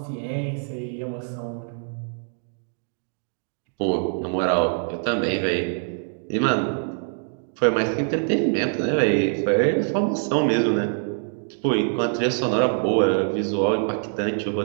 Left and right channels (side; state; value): left; silent; 60 dB below the other